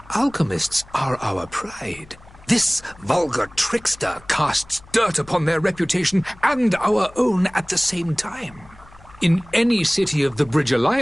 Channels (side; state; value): left; noise; hum, 24 dB below the sound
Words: alchemists are our pride. This vulgar trickster casts dirt upon their reputation and our own at the same time. In any city of the Bridge